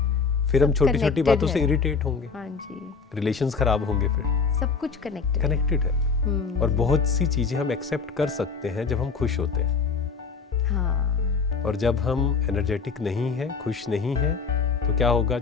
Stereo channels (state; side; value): quieter; right; 5.2 dB